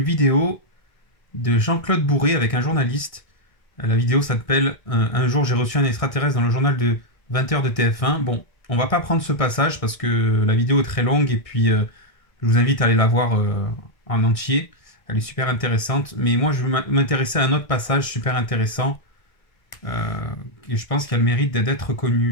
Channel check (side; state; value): right; late; 1.6 ms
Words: vidéo de Jean-Claude Bourré avec un journaliste. La vidéo s'appelle Un jour j'ai reçu un extraterrestre dans le journal de 20h de TF1. Bon, on va pas prendre ce passage parce que la vidéo est très longue et puis je vous invite à aller la voir en entier. Elle est super intéressante. Mais moi, je veux m'intéresser à un autre passage super intéressant et je pense qu'il a le mérite d'être connu.